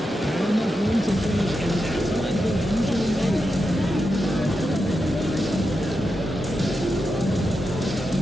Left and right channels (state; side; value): normal; both; correlation 0.88